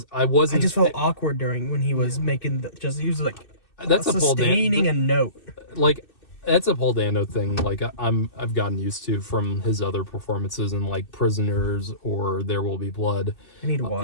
I just felt awkward during when he was making he was like that's sustaining a note. Like, that's a Paul Dano thing. Like, I've gotten used to from his other performances in like Prisoners or There Will Be Blood. I need to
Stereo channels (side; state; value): right; late; 2.6 ms